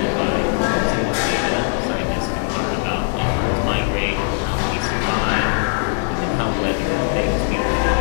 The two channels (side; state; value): right; silent; digital silence